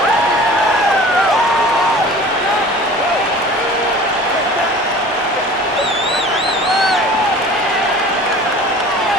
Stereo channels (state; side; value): normal; both; correlation 0.43